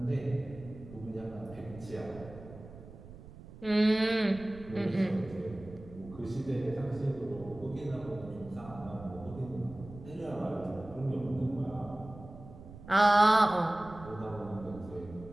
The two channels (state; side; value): noise; right; rumble, 16 dB below the sound